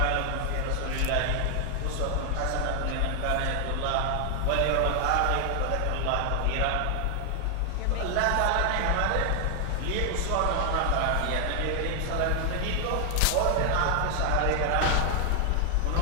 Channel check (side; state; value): both; different; correlation 0.00